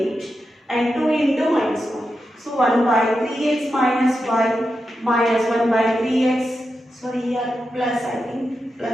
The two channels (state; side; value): normal; both; correlation 0.88